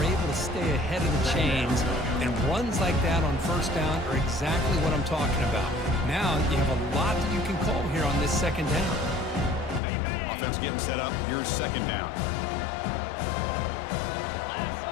able to stay ahead of the chains, and runs like that on first down are exactly what I'm talking about. Now you have a lot that you can call here on this second down. Offense getting set up. Here's second down.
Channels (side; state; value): right; drops out; at 9.8 s